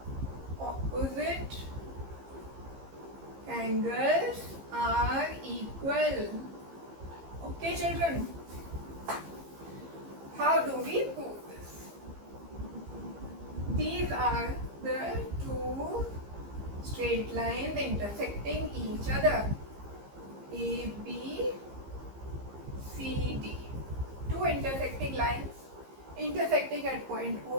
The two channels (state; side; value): late; left; 15 ms